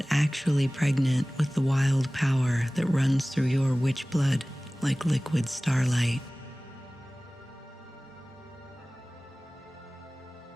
actually pregnant with the wild power that runs through your witch blood like liquid starlight?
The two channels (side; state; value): both; normal; correlation 0.98